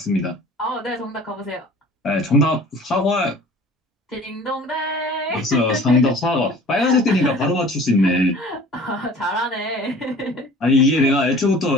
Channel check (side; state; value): both; normal; correlation 0.46